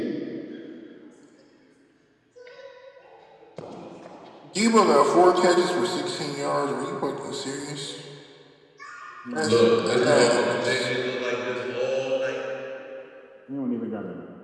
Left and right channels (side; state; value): both; identical; correlation 1.00